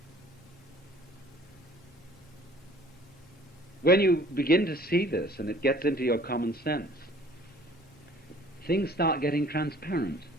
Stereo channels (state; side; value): normal; both; correlation 0.53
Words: When you begin to see this and it gets into your common sense, things start getting transparent.